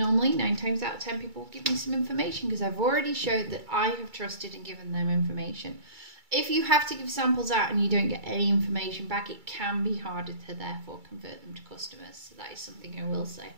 9 times out of 10 people will give me some information because I've already showed that I have trusted and given them information. If you have to give samples out and you don't get any information back, it can be harder to therefore convert them to customers. So that is something I will say.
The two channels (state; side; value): late; left; 2.3 ms